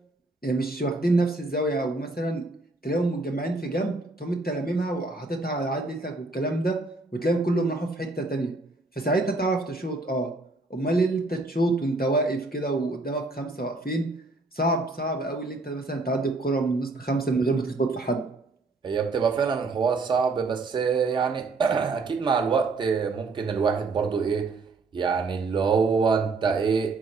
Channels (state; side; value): quieter; left; 3.4 dB